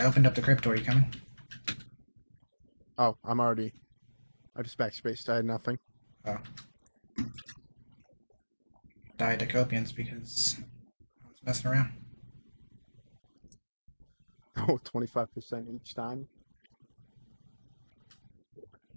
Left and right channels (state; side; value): inverted; both; correlation -1.00